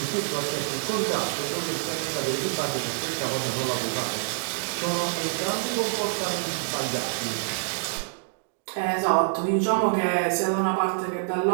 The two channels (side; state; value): left; silent; digital silence